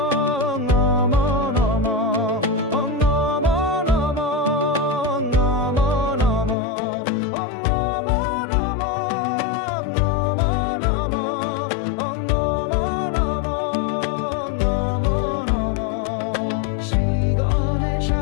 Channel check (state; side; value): drops out; right; at 6.6 s